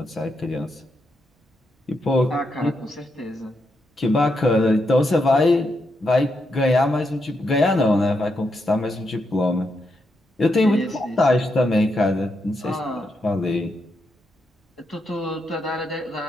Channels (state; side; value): normal; both; correlation 0.82